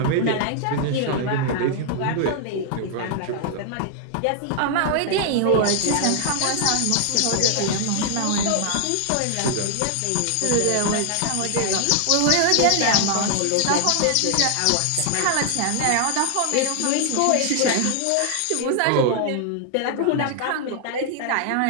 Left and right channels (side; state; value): both; different; correlation 0.00